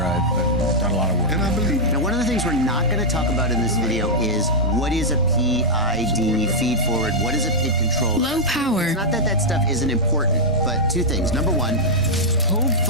done a lot of work. And I believe Now, one of the things we're not going to talk about in this video is what is a PID, feed forward, what is a PID controller? Low power. It's not that that stuff isn't important, but two things. Number one,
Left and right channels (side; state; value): both; normal; correlation -0.06